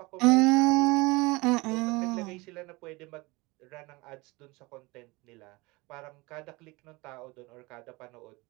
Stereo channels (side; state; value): left; quieter; 23.9 dB